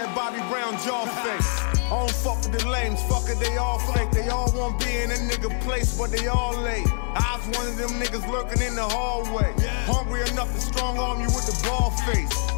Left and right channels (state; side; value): silent; right; 62 dB below the other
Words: that Bobby Brown jaw face. I don't fuck with the lames, fuck it, they all fake. They all want be in a nigga place, but they all late. I was one of them niggas lurking in the hallway. Hungry enough to strong arm you with the ball face.